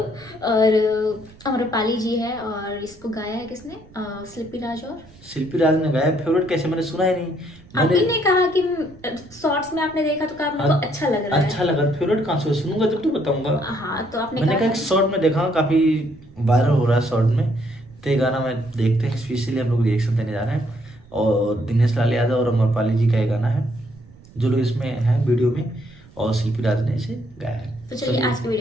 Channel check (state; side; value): noise; right; rumble, 23 dB below the sound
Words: और अमरपाली जी है। और इसको गाया है किसने? शिल्पी राज ने गाया। फेवरेट कैसे, मैंने सुना ही नहीं। आपने ने कहा कि शॉर्ट्स में आपने देखा तो कहा आपको अच्छा लग रहा है। अच्छा लगा। फेवरेट कहाँ से सुनूंगा जब तो बताऊंगा। हाँ तो आपने मैंने कहा शॉर्ट में देखा, काफी वायरल हो रहा है शॉर्ट में, तो ये गाना मैं देखते हैं। स्पेशली हम लोग रिएक्शन देने जा रहे हैं और दिनेश लाल यादव और अमरपाली जी का ये गाना है जो लोग इसमें है वीडियो में, और शिल्पी राज ने इसे गाया है। तो चलिए आज की